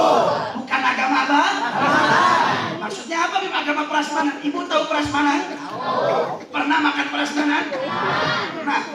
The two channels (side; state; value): both; identical; correlation 1.00